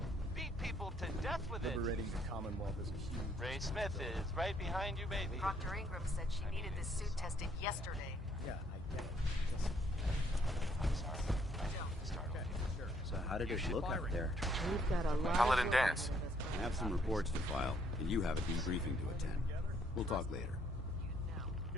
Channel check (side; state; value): both; normal; correlation 0.67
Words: beat people to death with it. Liberating the Commonwealth is a huge... Ray Smith is right behind you, baby. Proctor Ingram said she needed this suit tested yesterday. Yeah, I get it. I'm sorry. I don't start. Okay, sure. So how did it look out there? We've got a lot Paladin of Dance. I have some reports to file, and you have a debriefing to attend. We'll talk later.